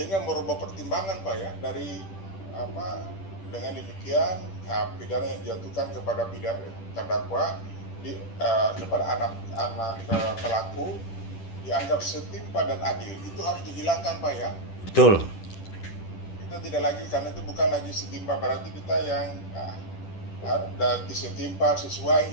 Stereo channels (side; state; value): right; late; 10 ms